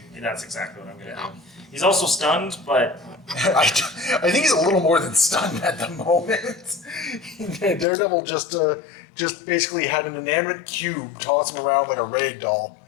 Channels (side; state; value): right; drops out; at 7.9 s